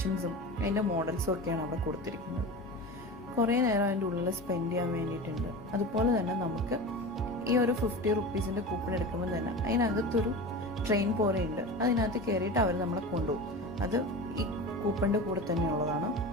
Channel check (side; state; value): both; normal; correlation 0.30